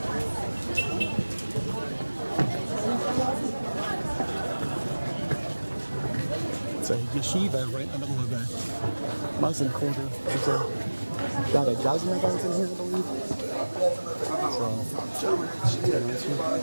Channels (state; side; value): inverted; both; correlation -1.00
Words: It's a yeshiva right in the middle of a Muslim quarter. There's about a dozen of those in here, I believe.